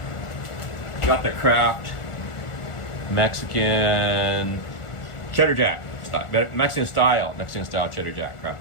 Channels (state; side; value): late; right; 1.4 ms